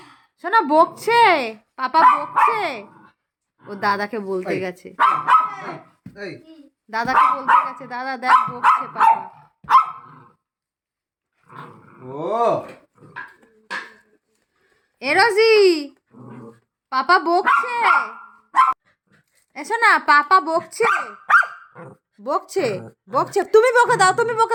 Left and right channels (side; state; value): both; identical; correlation 1.00